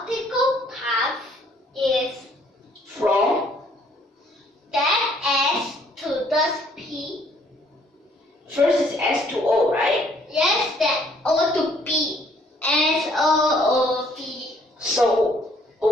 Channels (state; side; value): normal; both; correlation 0.63